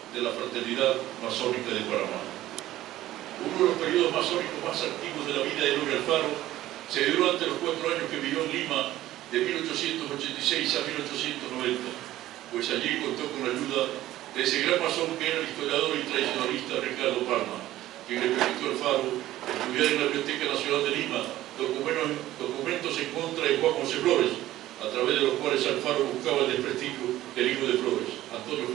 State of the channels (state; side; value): quieter; left; 14.8 dB